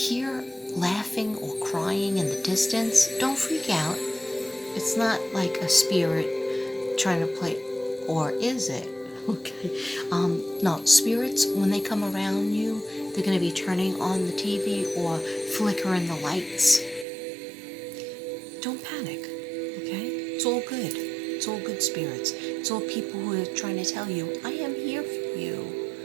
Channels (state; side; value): drops out; left; at 17.1 s